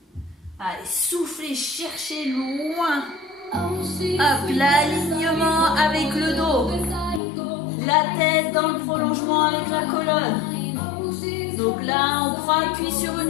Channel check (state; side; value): drops out; right; at 7.2 s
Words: Allez, soufflez, cherchez loin. Hop, l'alignement avec le dos. La tête dans le prolongement avec la colonne. Donc là, on prend appui sur